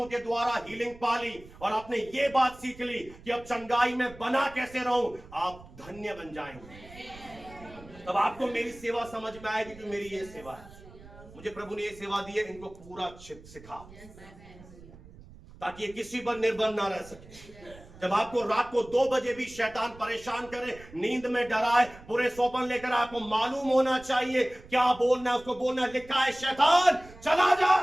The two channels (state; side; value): noise; right; rumble, 20 dB below the sound